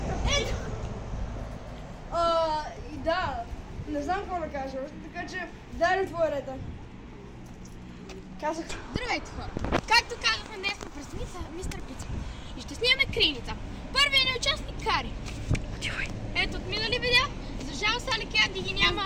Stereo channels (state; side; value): identical; both; correlation 1.00